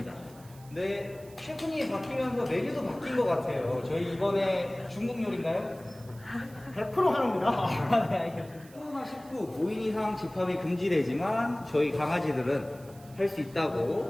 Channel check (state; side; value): noise; right; hiss, 24 dB below the sound